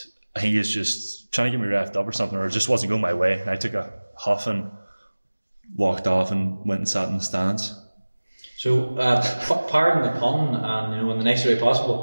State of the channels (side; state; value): both; inverted; correlation -1.00